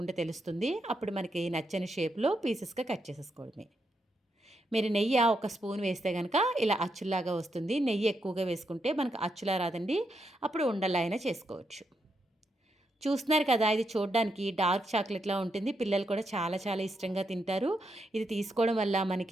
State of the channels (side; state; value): both; normal; correlation 0.81